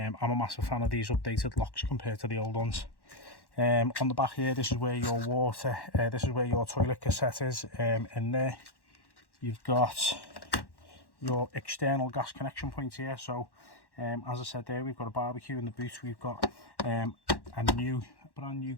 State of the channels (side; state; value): right; late; 1.1 ms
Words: a massive fan of these updated locks compared to the old ones. On the back here, this is where your water, this is where your toilet cassette is. In there you've got your external gas connection point here. So as I said there, we've got a barbecue in the boot. We've got a brand new